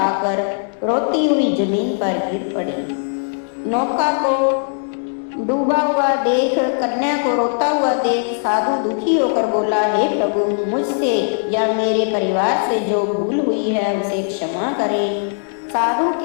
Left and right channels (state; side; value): silent; right; 66 dB below the other